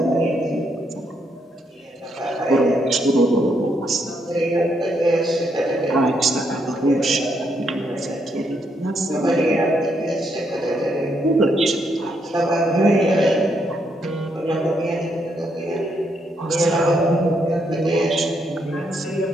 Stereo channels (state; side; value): normal; both; correlation 0.76